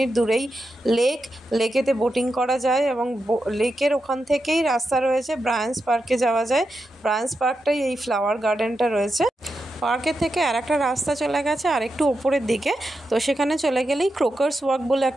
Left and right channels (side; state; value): both; normal; correlation 0.87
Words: দূরেই লেকেতে বোটিং করা যায়, এবং লেকের ওখান থেকেই রাস্তা রয়েছে, ব্রায়ান্স পার্কে যাওয়া যায়। ব্রায়ান্স পার্কটাই এই ফ্লাওয়ার গার্ডেনটা রয়েছে। পার্কের থেকে আর একটা রাস্তা চলে গেছে আর একটু ওপরের দিকে, তো সেখানে চলে গেলেই ক্রোকার্স ওয়াক বলে